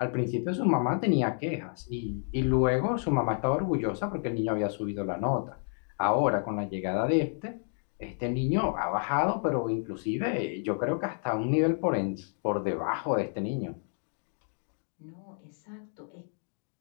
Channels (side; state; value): right; silent; 57 dB below the other